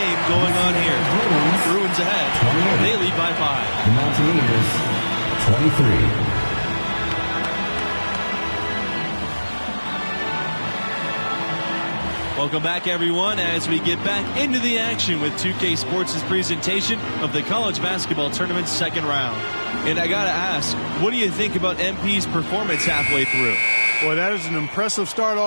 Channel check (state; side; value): inverted; both; correlation -1.00